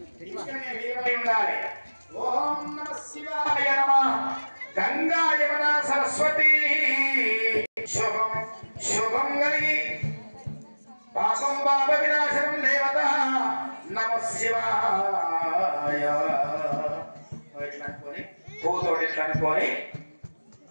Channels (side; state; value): both; inverted; correlation -1.00